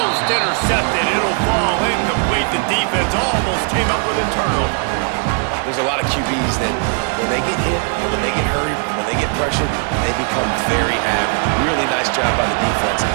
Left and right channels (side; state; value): left; quieter; 39.2 dB